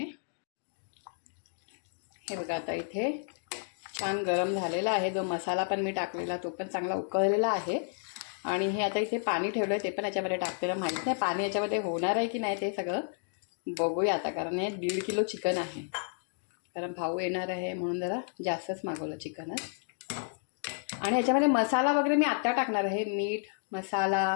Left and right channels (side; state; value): right; silent; digital silence